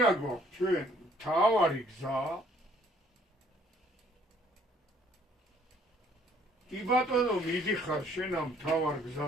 გვაქვს ჩვენ მთავარი გზა. კი ბატონო, მიდიხარ შენ ამ მთავარ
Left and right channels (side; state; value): both; normal; correlation 0.61